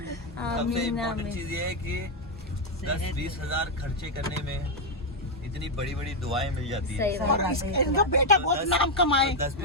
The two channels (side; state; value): both; normal; correlation 0.01